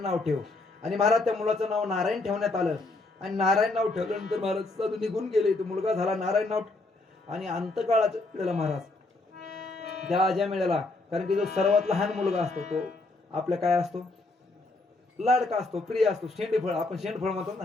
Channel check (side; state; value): right; quieter; 3.2 dB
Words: नाव ठेव. आणि महाराज त्या मुलाचं नाव नारायण ठेवण्यात आलं. आणि नारायण नाव ठेवल्यानंतर महाराज साधू निघून गेले. तो मुलगा झाला नारायण नाव. आणि अंतकाळाच्या वेळेला महाराज त्या अजामिळाला, कारण की जो सर्वात लहान मुलगा असतो तो आपल्या काय असतो, लाडका असतो, प्रिय असतो, शेंडफळ, आपण शेंडफळ म्हणतो